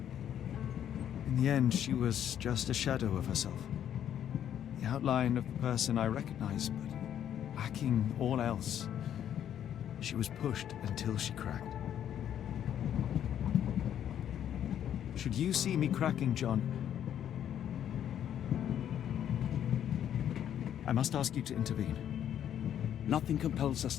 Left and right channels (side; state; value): right; quieter; 10.1 dB